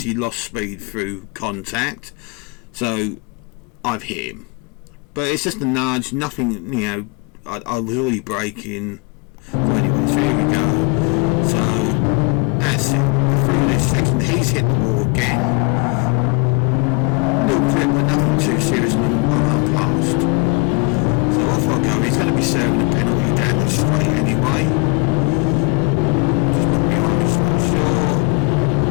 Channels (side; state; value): right; quieter; 28.5 dB